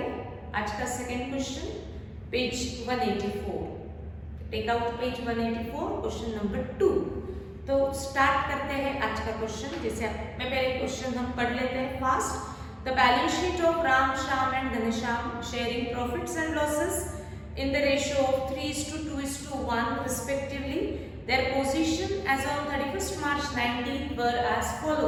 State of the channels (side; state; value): both; identical; correlation 1.00